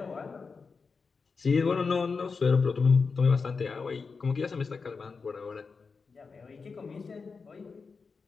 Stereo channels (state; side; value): quieter; right; 4.8 dB